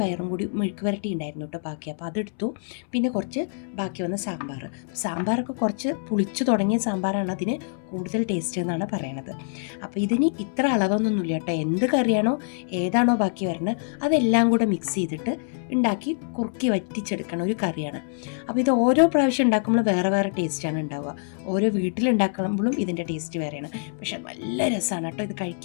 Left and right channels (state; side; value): silent; right; 62 dB below the other